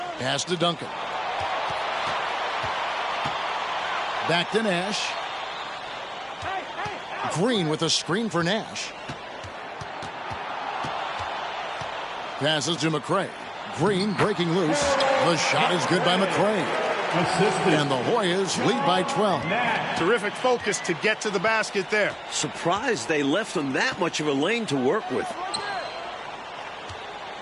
Pass to Duncan. Back to Nash. Green with a screen for Nash. Passes to McCray. Green breaking loose. The shot is good by McCray. And the Hoyas lead by 12. Terrific focus to get to the basket there. Surprised they left them that much of a lane to work with.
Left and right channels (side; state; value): both; identical; correlation 1.00